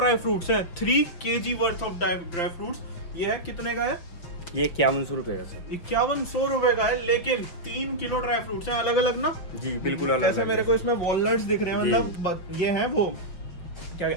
फ्रूट्स है, 3 kg worth of dry fruits. ये है कितने का है? ये 5100 रुपये का सर। 5100 रुपए का है, लेकिन 3 किलो ड्राई फ्रूट्स हैं, अलग अलग ना? जी बिल्कुल अलग। जैसे मेरे को इसमें वॉलनट्स दिख रहे हैं, मतलब ये है वो क्या,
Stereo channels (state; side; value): late; right; 5.9 ms